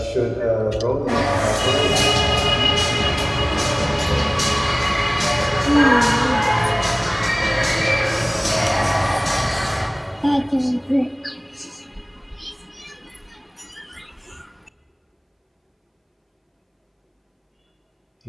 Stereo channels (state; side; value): identical; both; correlation 1.00